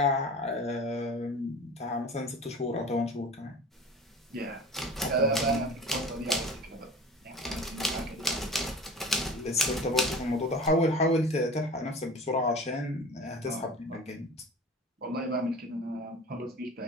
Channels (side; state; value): both; normal; correlation 0.38